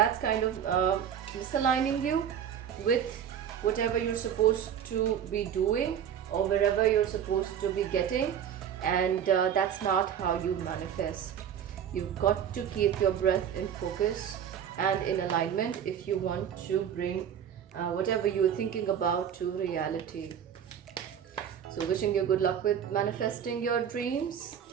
kind of misaligning you with whatever you're supposed to be doing or wherever you're supposed to be getting, and that's not how you manifest. You've got to keep your breath in focus and in alignment if you want to bring whatever you're thinking about to reality. So wishing you good luck with manifesting your dreams.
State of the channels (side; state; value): left; quieter; 8.8 dB